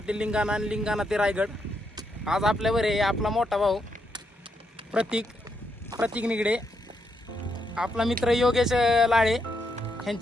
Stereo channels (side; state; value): both; normal; correlation 0.79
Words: ते लिंगाणा आणि लिंगाणा ते रायगड. आज आपल्यावर आहे आपला मोठा भाऊ प्रतीक निगडे, आपला मित्र योगेश लाळे